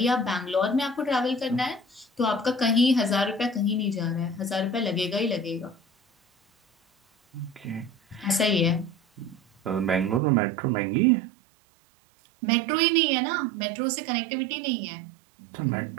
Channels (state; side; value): drops out; left; at 10.2 s